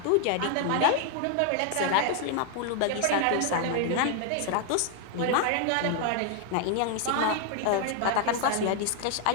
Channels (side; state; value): both; different; correlation 0.00